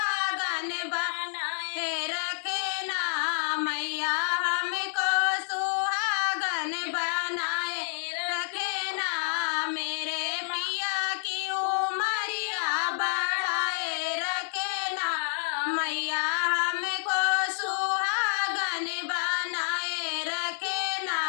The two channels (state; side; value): silent; right; digital silence